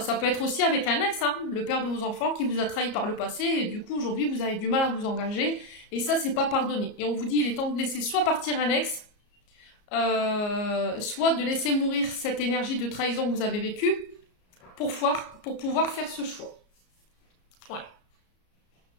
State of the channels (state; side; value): late; right; 33 ms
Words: peut être aussi avec un ex, hein, le père de vos enfants qui vous a trahi par le passé. Et du coup, aujourd'hui, vous avez du mal à vous engager. Et ça, c'est pas pardonné. Et on vous dit, il est temps de laisser soit partir un ex, soit de laisser mourir cette énergie de trahison que vous avez vécue pour pouvoir faire ce choix. Ouais.